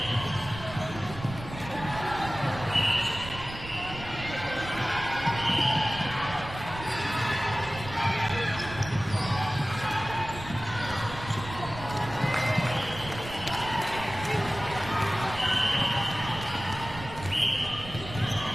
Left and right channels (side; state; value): right; noise; rumble, 12 dB below the sound